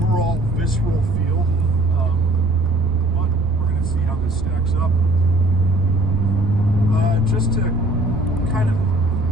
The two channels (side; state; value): right; noise; rumble, 7 dB below the sound